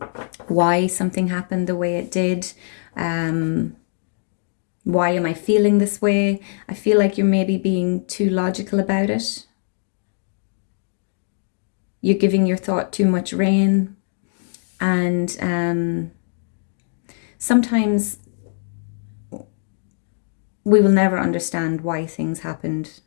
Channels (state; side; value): silent; right; digital silence